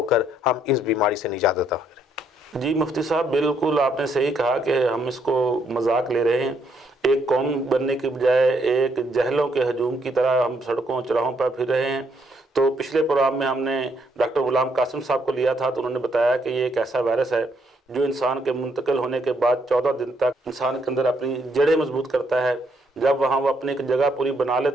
کر ہم اس بیماری سے نجات عطا کریں. جی مفتی صاحب، بالکل آپ نے صحیح کہا کہ ہم اس کو مذاق لے رہے ہیں. ایک قوم بننے کے بجائے ایک جہلوں کے ہجوم کی طرح ہم سڑکوں چراہوں پر پھر رہے ہیں. تو پچھلے پروگرام میں ہم نے ڈاکٹر غلام قاسم صاحب کو لیا تھا تو انہوں نے بتایا کہ یہ ایک ایسا وائرس ہے جو انسان کے منتقل ہونے کے بعد 14 دن تک انسان کے اندر اپنی جڑیں مضبوط کرتا ہے. جب وہاں وہ اپنی ایک جگہ پوری بنا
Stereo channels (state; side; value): normal; both; correlation 0.72